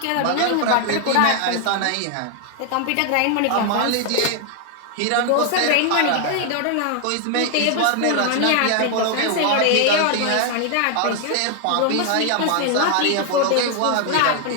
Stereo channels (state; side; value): different; both; correlation 0.00